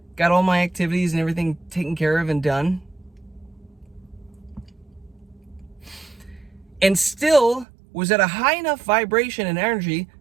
got all my activities and everything taken care of and done, and still was at a high enough vibration and energy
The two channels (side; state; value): left; drops out; at 7.7 s